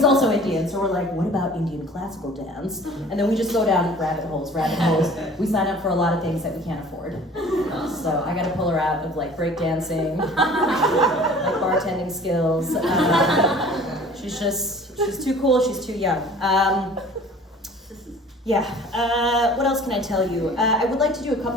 also Indian, so we're like, what about Indian classical dance? And then we just go down rabbit holes. We sign up for a lot of things that we can't afford. So I gotta pull her out of like breakdancing, like bartending skills. She's too cool, she's too young. What else can I tell you? I would like to do a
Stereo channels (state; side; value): normal; both; correlation 0.47